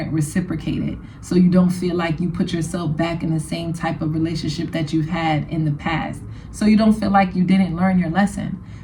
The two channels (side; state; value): both; identical; correlation 1.00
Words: reciprocated, so you don't feel like you put yourself back in the same type of relationship that you've had in the past, so you don't feel like you didn't learn your lesson.